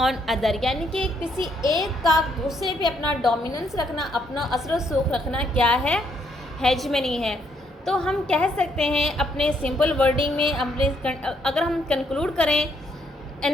on other, यानी कि किसी एक का दूसरे पे अपना डोमिनेंस रखना, अपना असर व सूख रखना क्या है? हेजेमनी है। तो हम कह सकते हैं अपने सिंपल वर्डिंग में, अगर हम कंक्लूड करें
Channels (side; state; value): both; normal; correlation 0.72